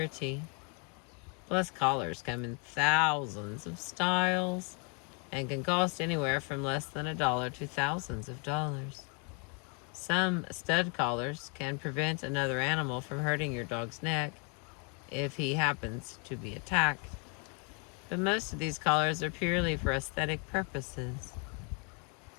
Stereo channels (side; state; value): right; quieter; 36.2 dB